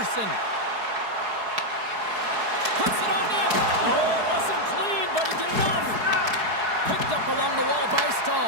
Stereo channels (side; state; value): left; late; 4.7 ms